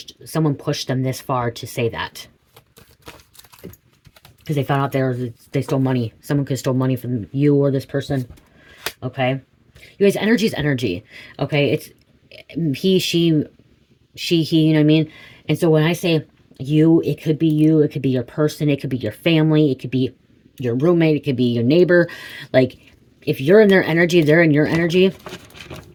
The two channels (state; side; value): identical; both; correlation 1.00